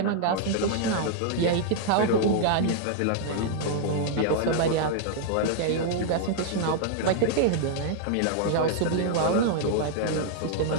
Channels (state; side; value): different; both; correlation -0.01